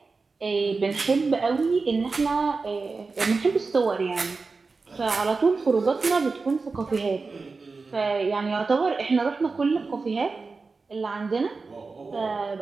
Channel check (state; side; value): quieter; left; 4.2 dB